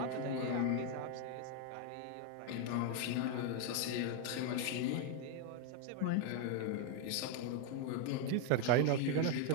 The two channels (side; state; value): both; different; correlation 0.01